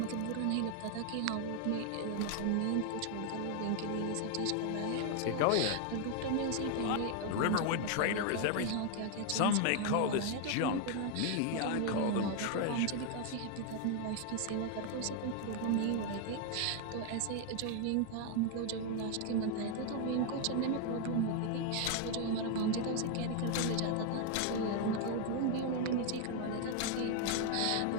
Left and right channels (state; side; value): different; both; correlation 0.00